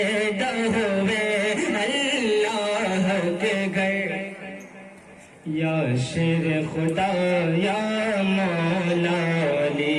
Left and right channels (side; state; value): both; identical; correlation 1.00